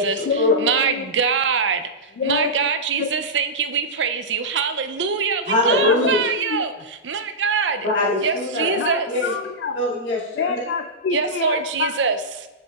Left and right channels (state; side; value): normal; both; correlation -0.12